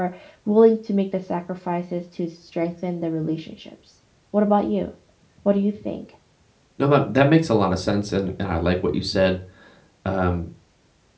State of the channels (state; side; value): identical; both; correlation 1.00